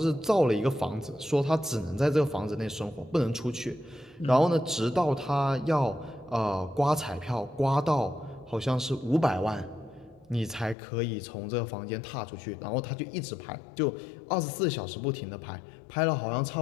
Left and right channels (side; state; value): right; drops out; at 10.8 s